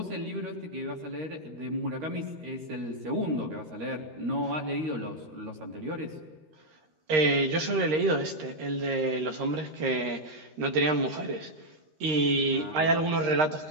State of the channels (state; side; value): late; left; 13 ms